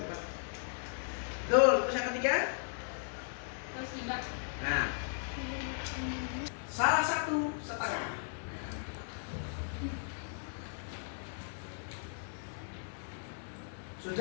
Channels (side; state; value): right; silent; digital silence